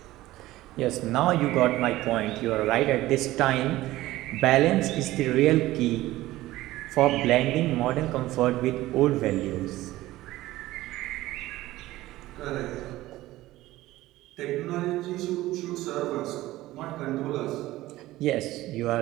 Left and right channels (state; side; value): quieter; left; 16.7 dB